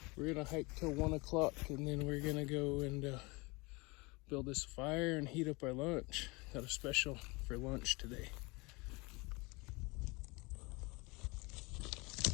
We're gonna hike till 1 o'clock and then we're gonna go and build this fire and heat up our lunch. Got a special for lunch today.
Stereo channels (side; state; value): right; quieter; 25.9 dB